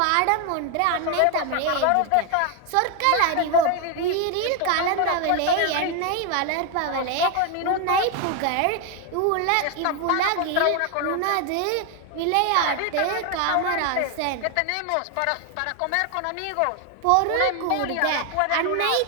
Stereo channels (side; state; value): both; different; correlation 0.01